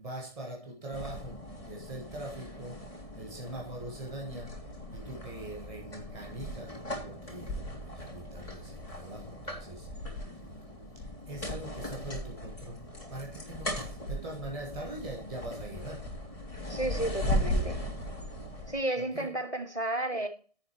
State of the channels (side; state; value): right; late; 1.7 ms